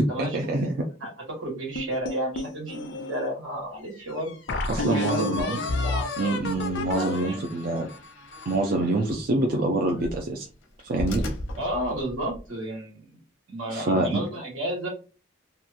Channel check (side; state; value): both; normal; correlation 0.38